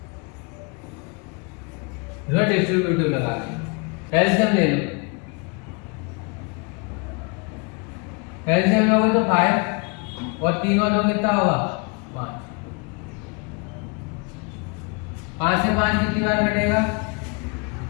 डिस्ट्रीब्यूटिव लगा एलसीएम ले लो। एलसीएम लोगे तो 5 और 3 और 2 कितना होगा, 5। 5 से 5 कितनी बार कटेगा,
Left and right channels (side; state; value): right; quieter; 32.7 dB